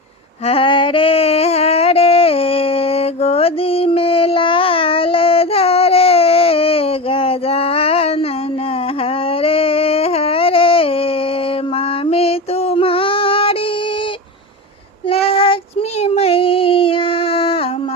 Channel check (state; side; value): normal; both; correlation 0.23